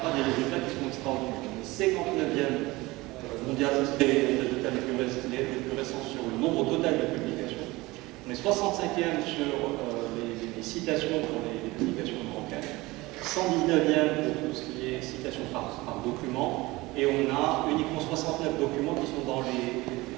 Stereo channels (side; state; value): left; quieter; 21.0 dB